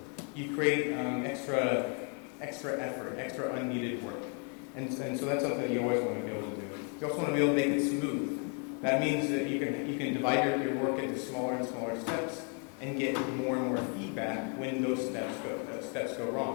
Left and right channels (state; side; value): quieter; right; 39.2 dB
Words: you create extra effort, extra unneeded work. And so that's something that you always want to be able to do. You also want to be able to make it smooth. That means that you can divide your work into smaller and smaller steps and get more and more feedback when those steps go